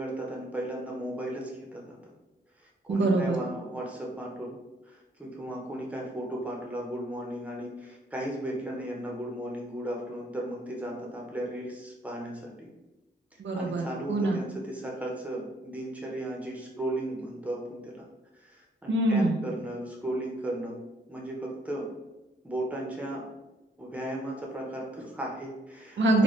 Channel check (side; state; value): both; normal; correlation 0.66